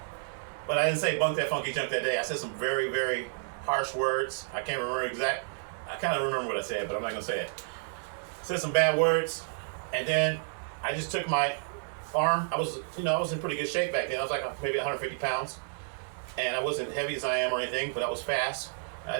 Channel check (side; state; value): left; silent; digital silence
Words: But I didn't say bunk that funky junk that day. I said some very, very harsh words. I can't remember I kind of remember what I said, but I'm not going to say it. I said some bad words, and then I just took my arm. I was in pretty good shape back then. I was like maybe 150 pounds, and I wasn't heavy as I am or anything, but I was fast. And I